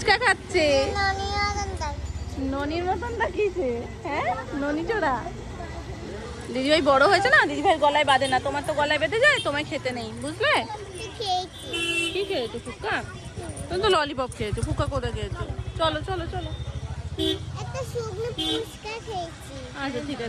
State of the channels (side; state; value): both; identical; correlation 1.00